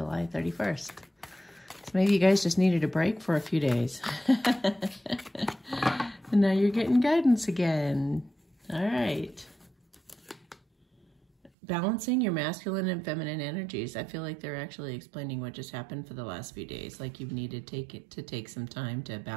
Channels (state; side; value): drops out; left; at 11.5 s